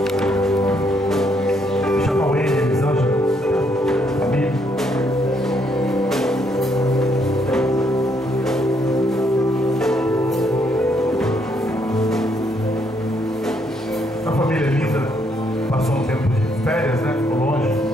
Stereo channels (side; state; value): both; normal; correlation 0.72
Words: Chama o Ele, Elisângela, família. A família linda passou um tempo de férias, né? Ficou longe